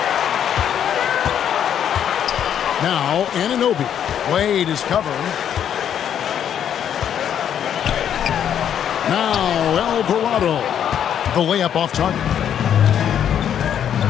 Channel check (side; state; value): right; quieter; 9.3 dB